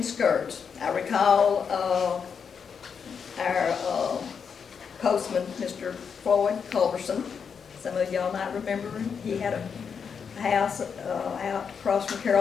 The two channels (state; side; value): quieter; right; 6.5 dB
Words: skirts. I recall our postman, Mr. Floyd Culberson. Some of y'all might remember him. He had a house out across from